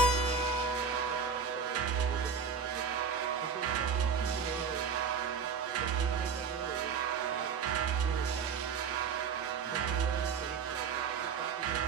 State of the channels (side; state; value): left; quieter; 6.1 dB